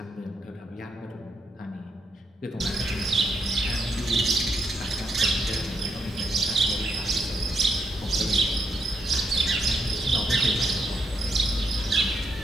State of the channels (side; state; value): both; normal; correlation 0.79